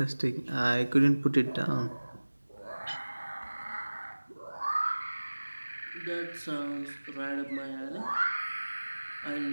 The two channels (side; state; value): both; inverted; correlation -1.00